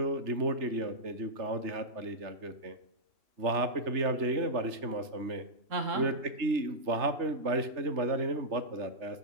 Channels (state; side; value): late; left; 3.3 ms